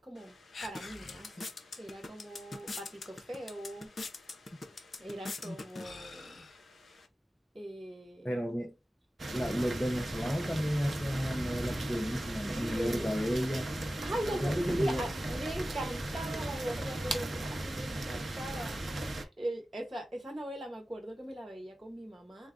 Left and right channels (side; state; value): both; normal; correlation 0.94